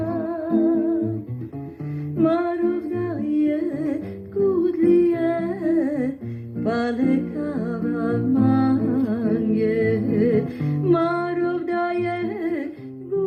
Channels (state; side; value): identical; both; correlation 1.00